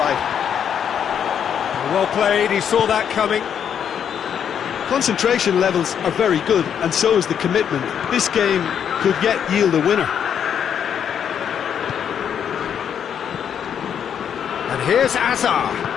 Well played, he saw that coming. Concentration levels are very good, and so is the commitment. This game could yet yield a winner. And here's Hazard.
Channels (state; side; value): quieter; right; 8.4 dB